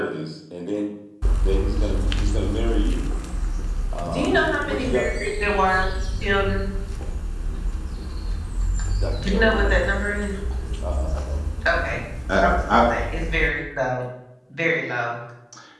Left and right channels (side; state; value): both; identical; correlation 1.00